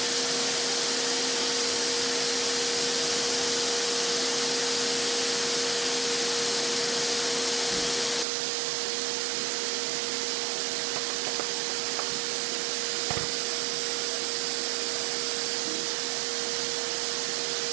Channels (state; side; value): drops out; left; at 8.2 s